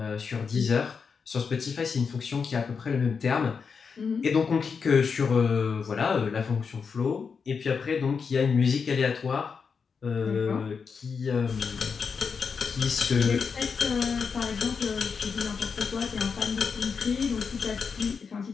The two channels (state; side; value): quieter; right; 5.7 dB